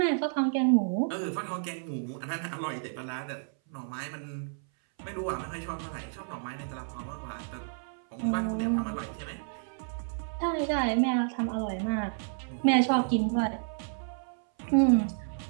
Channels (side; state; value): left; silent; 57 dB below the other